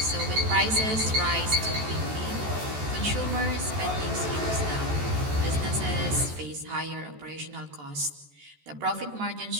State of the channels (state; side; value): late; left; 14 ms